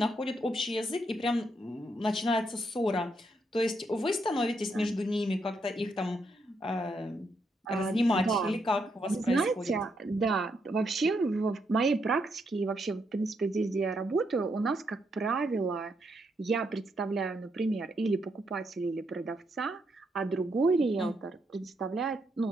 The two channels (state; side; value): normal; both; correlation 0.78